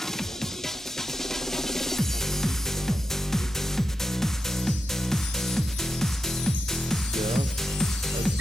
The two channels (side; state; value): both; normal; correlation 0.88